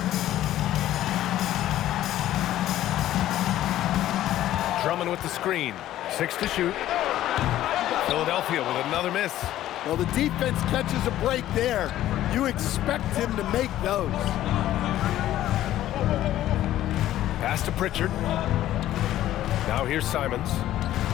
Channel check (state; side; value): quieter; right; 13.4 dB